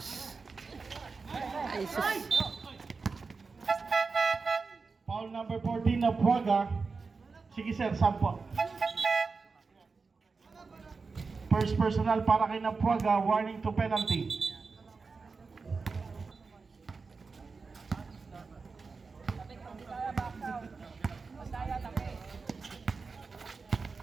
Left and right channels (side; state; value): left; quieter; 4.5 dB